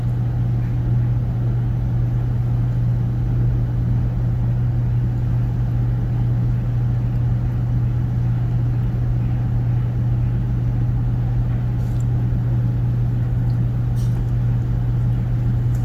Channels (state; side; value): identical; both; correlation 1.00